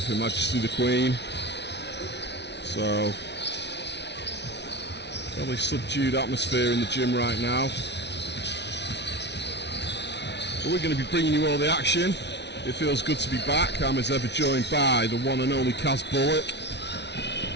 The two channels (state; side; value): late; right; 0.50 ms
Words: Her Majesty the Queen. So, fairly subdued atmosphere in the gym right now. But we're going to be bringing you all the action. It feels good to be back. I'm as ever joined by the one and only Kaz Bullock.